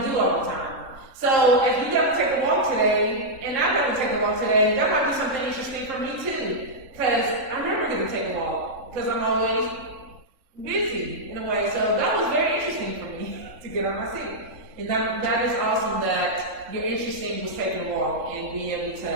do all the time. So if you got to take a walk today, and I got to take a walk today, that might be something interesting for me too. Because I'm never going to take a walk, because I'm always busy in a way. So that was very interesting for me to get on my seat. And that is awesome that you're interested in taking a walk and being able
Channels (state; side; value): late; left; 3.8 ms